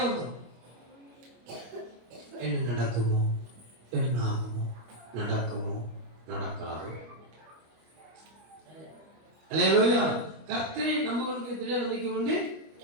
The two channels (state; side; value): late; left; 25 ms